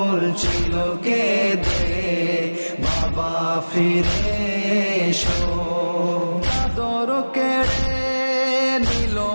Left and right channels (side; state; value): both; inverted; correlation -1.00